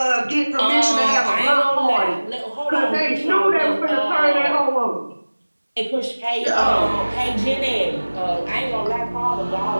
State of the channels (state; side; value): inverted; both; correlation -1.00